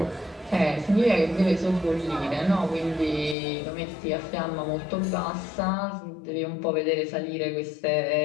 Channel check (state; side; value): drops out; right; at 3.4 s